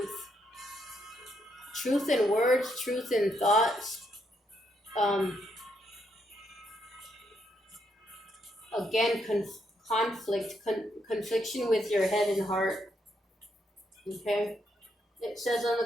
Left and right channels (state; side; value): normal; both; correlation 0.77